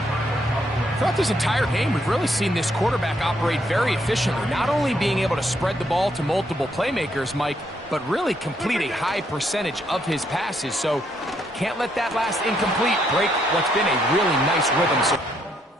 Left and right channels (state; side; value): normal; both; correlation 0.73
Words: Throughout this entire game, we've really seen this quarterback operate very efficiently, not only being able to spread the ball to multiple playmakers, Mike, but really complete a high percentage of his passes. So can't let that last incomplete break what's been a really nice rhythm. So